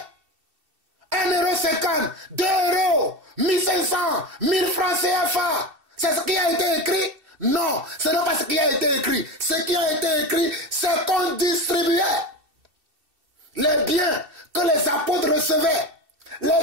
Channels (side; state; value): left; late; 2.7 ms